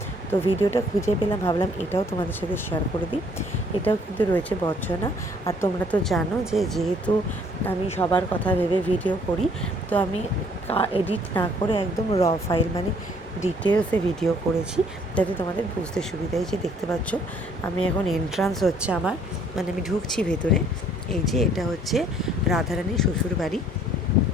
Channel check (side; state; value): both; normal; correlation 0.61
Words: তো ভিডিওটা খুঁজে পেলাম, ভাবলাম এটাও তোমাদের সাথে শেয়ার করে দিই। এটাও কিন্তু রয়েছে বর্ষণা। আর তোমরা তো জানো যে যেহেতু আমি সবার কথা ভেবে ভিডিও করি, তো আমি এডিট না করে একদম র ফাইল মানে ডিটেলসে ভিডিও করেছি, যাতে তোমাদের বুঝতে সুবিধা। এই যে দেখতে পাচ্ছ, আমি এখন এন্ট্রান্স হচ্ছে আমার, মানে আমি ঢুকছি ভেতরে। এই যে এটা হচ্ছে রাধারানীর শ্বশুর বাড়ি।